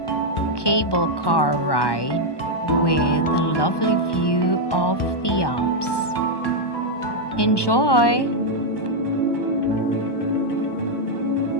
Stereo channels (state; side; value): late; right; 1.2 ms